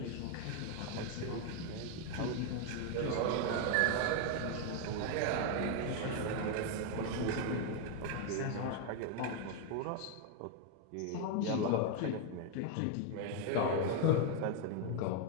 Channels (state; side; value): different; both; correlation 0.01